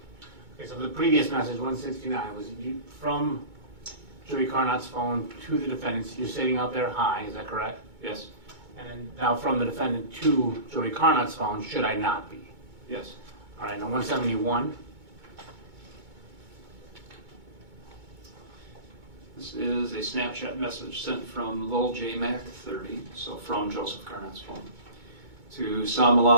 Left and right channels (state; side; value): late; left; 2.2 ms